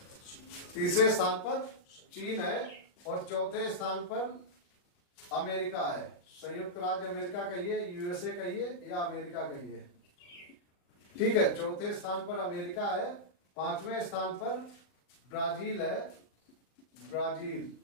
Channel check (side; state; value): right; late; 39 ms